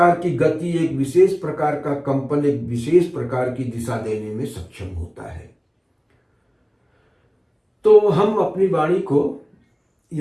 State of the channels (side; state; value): both; identical; correlation 1.00